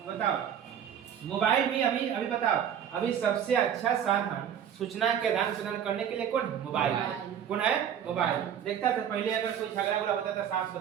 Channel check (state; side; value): quieter; left; 8.9 dB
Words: बताओ मोबाइल भी अभी बताओ अभी सबसे अच्छा साधन सूचना के आदान प्रदान करने के लिए कौन है? मोबाइल। कौन है? मोबाइल। देखता था पहले अगर कोई झगड़ा होता था सास